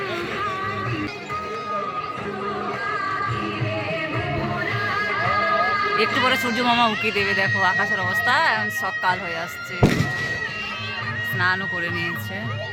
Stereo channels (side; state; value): both; identical; correlation 1.00